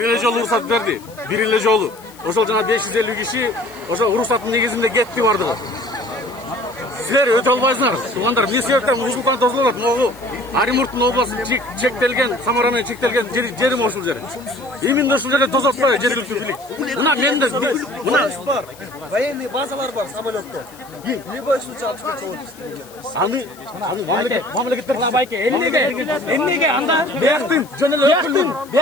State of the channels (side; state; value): left; noise; hiss, 23 dB below the sound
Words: эле жолу уруксат берди. Бир эле жолу. Ошол жана 550 киши ошол уруксаттын негизинде кетти бардыгы. Силер өтө албайсыңар. Туугандар, эмне себептен ушункан тосулуп атат? Могу Оренбургдун областу чектелген, Самара менен чектелген жерим ошол жер. Именно ошол жерде тосуп атпайбы жергиликтүү бийлик? Мына менде мына бар. Военный базалар бар самолетто. Любой случай алып кетип аны мамлекеттер Байке, эмнеге анда бияктын